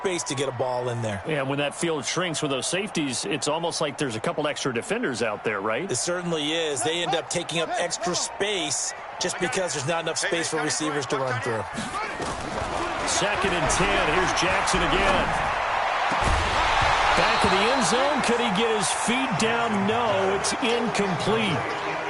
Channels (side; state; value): both; identical; correlation 1.00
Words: to get a ball in there. Yeah, when that field shrinks with those safeties, it's almost like there's a couple extra defenders out there, right? It certainly is. They end up taking up extra space just because there's not enough space for receivers to run through. 2nd and 10. Here's Jackson again. Back in the end zone. Could he get his feet down? No, it's incomplete.